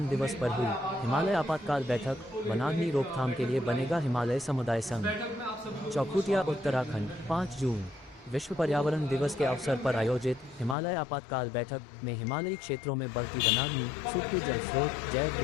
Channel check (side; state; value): right; drops out; at 10.8 s